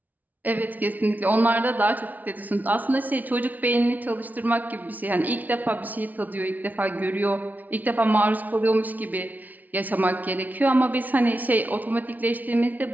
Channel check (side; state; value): left; late; 0.077 ms